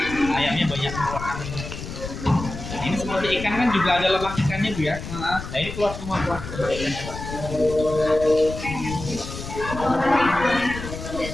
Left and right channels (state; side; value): noise; left; rumble, 9 dB below the sound